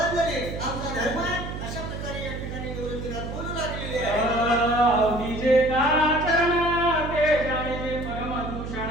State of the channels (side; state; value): right; noise; hum, 7 dB below the sound